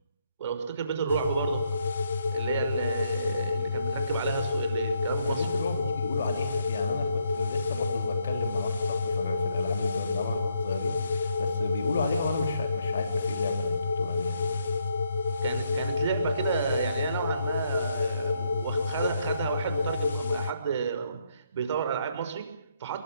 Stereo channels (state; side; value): inverted; both; correlation -0.76